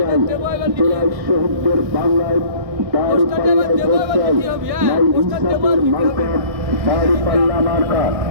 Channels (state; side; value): late; left; 1.6 ms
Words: জেলায় শহীদদের বাংলায় দাঁড়িপাল্লায় ভোট চাই। নাই ইনসাফের মার্কা দাঁড়িপাল্লা মার্কা।